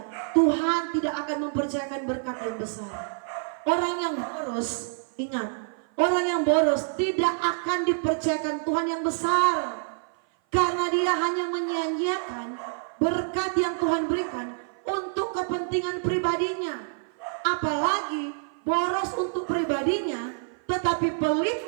Tuhan tidak akan mempercayakan berkat yang besar. Orang yang boros, ingat, orang yang boros tidak akan dipercayakan Tuhan yang besar, karena dia hanya menyia-nyiakan berkat yang Tuhan berikan untuk kepentingan pribadinya. Apalagi boros untuk pribadinya tetapi pelit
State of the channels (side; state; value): left; silent; 56 dB below the other